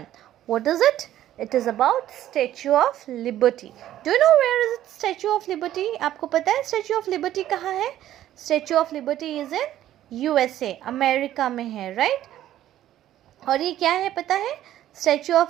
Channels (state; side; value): quieter; left; 12.7 dB